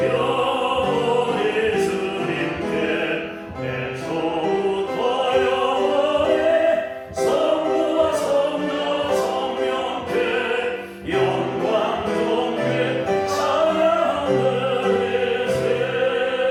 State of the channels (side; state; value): both; identical; correlation 1.00